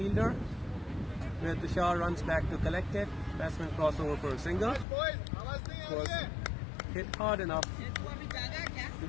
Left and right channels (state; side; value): drops out; right; at 4.9 s